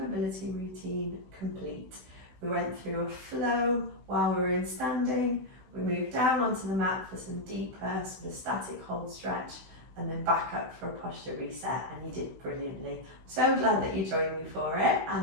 routine complete. We went through a flow while we were in standing. We moved down onto the mat for some deeper sort of static hold stretch, and then back up for a posture reset, and you did brilliantly. So glad that you joined me for it,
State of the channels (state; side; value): late; left; 16 ms